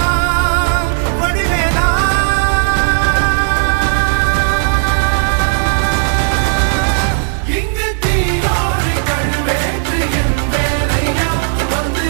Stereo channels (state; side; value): silent; left; digital silence